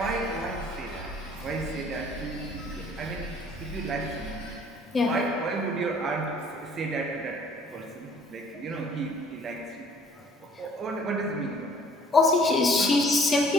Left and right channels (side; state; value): both; normal; correlation 0.55